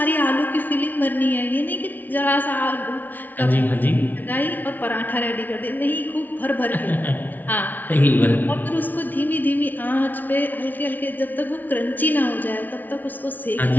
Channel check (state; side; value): late; right; 0.082 ms